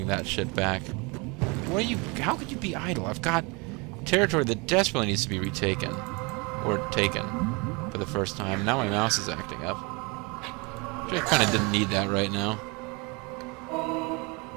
that shit back. What are you? How could you be idle? I've got territory that desperately needs to be retaken. Or taken. For the first time. Now my mouse is acting up. Which I kind of didn't need that right now.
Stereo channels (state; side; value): quieter; left; 28.7 dB